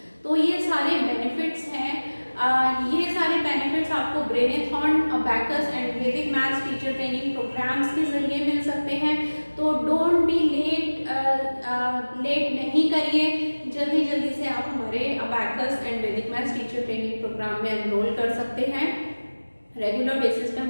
तो ये सारे बेनिफिट्स हैं, ये सारे बेनिफिट्स आपको ब्रेनेथॉन, अबैकस एंड वैदिक मैथ्स टीचर ट्रेनिंग प्रोग्राम्स के जरिए मिल सकते हैं। तो डोंट बी लेट नहीं करिए, जल्दी से आप हमारे अबैकस एंड वैदिक मैथ्स टीचर ट्रेनिंग प्रोग्राम में एनरोल कर सकते हैं। रेगुलर बेसिस पे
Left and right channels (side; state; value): both; inverted; correlation -1.00